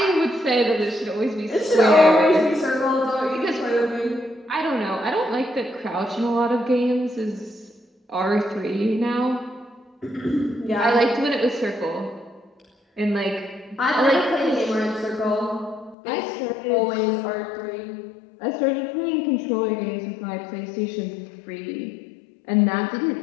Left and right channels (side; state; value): right; drops out; at 16.0 s